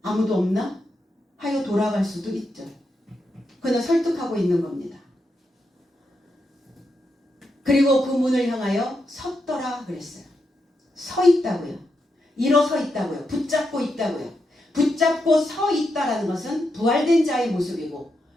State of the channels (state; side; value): normal; both; correlation 0.84